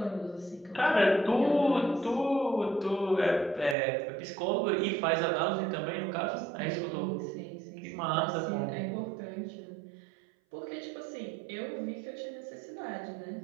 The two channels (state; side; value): drops out; left; at 3.8 s